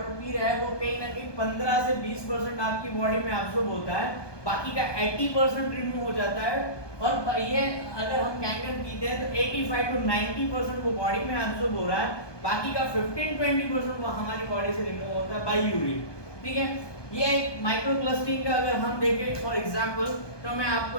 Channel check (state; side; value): late; right; 1.2 ms